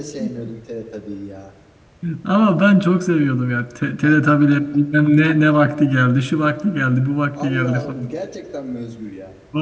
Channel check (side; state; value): both; identical; correlation 1.00